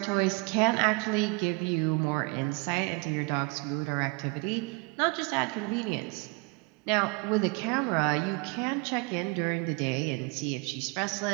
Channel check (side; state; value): left; quieter; 29.1 dB